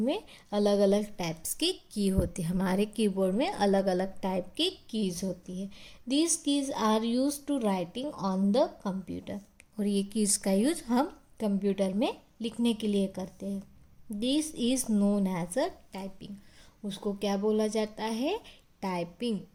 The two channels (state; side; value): identical; both; correlation 1.00